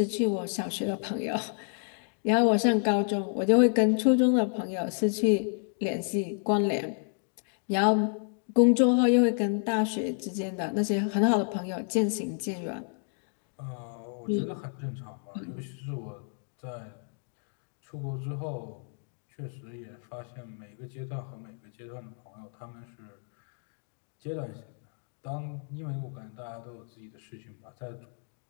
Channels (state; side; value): silent; right; 58 dB below the other